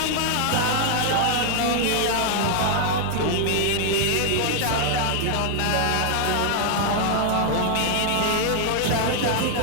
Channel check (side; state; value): both; different; correlation 0.00